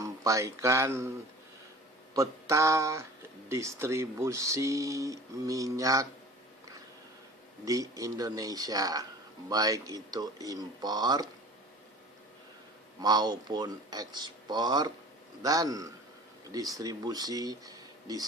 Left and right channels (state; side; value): normal; both; correlation 0.42